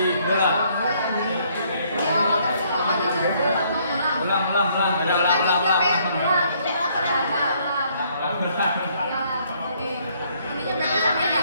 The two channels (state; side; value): inverted; both; correlation -0.66